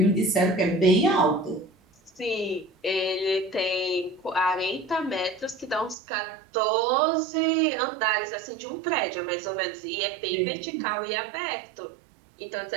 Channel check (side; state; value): left; drops out; at 6.0 s